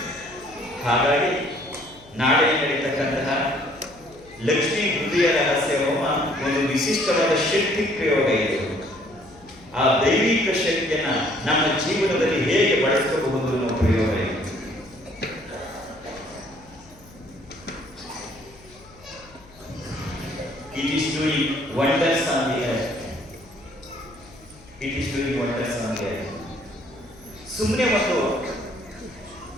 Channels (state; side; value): noise; left; hum, 24 dB below the sound